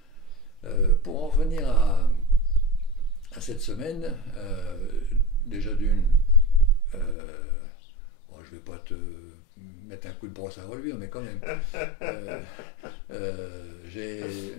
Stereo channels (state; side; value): drops out; right; at 7.2 s